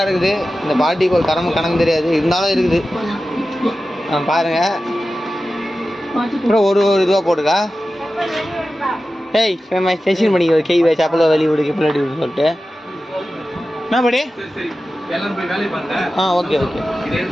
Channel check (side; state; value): both; normal; correlation 0.94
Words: இருக்குது. இந்த பாட்டிக்கு ஒரு கணக்கு தெரியாது, இருந்தாலும் இருக்குது. பாருங்கள். அப்புறம் ஒரு இதுவாக போட்டுக்கா. ஏய் செஷன் பண்ணிக்க கை வச்சு அப்பளோ வெளியே விடுக்கு பிள்ளாடி விடு சொல்லிட்டு என்ன படி. Okay okay.